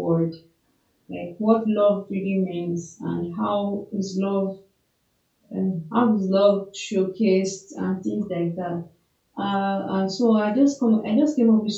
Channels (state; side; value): identical; both; correlation 1.00